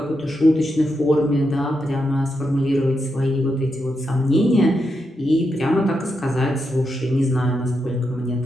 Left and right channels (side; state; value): both; normal; correlation 0.84